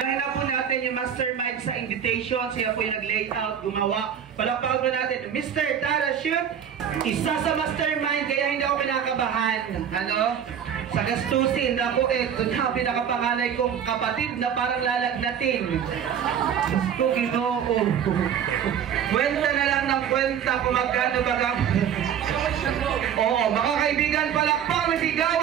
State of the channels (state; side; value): quieter; left; 8.6 dB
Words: Kaya po natin yung mastermind sa invitation. Siya po yung nag-layout, gumawa. Palapag po natin, Mr. Tarashoot, isa sa mastermind, kaya hindi ako pinakabahan. Ano? Sa gastusin na po ito na pinakapanganay kong kapatid na parang lalagnatin. Gusto Ginoo. Kwenta na lang ng kwenta kung magkano baga. Oo, mga kaibigan, palakpak na